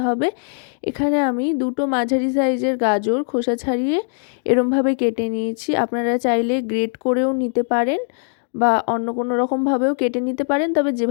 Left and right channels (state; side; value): silent; right; 56 dB below the other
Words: হবে। এখানে আমি দুটো মাঝারি সাইজের গাজর খোসা ছাড়িয়ে এরমভাবে কেটে নিয়েছি। আপনারা চাইলে গ্রেট করেও নিতে পারেন বা অন্য কোনো রকমভাবেও কেটে নিতে পারেন, তবে